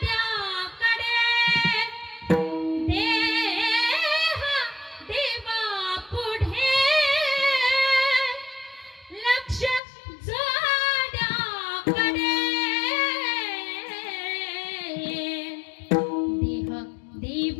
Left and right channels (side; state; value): right; drops out; at 9.8 s